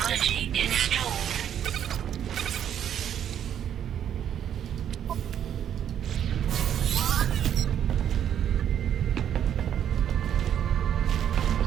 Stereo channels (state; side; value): quieter; left; 9.6 dB